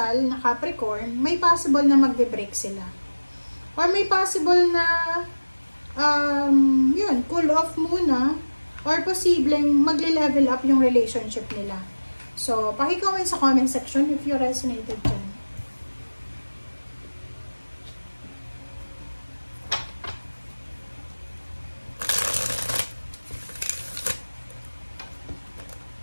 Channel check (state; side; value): inverted; both; correlation -1.00